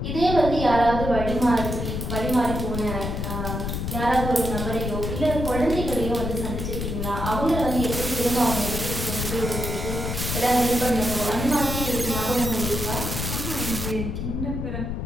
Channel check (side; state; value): left; noise; rumble, 3 dB below the sound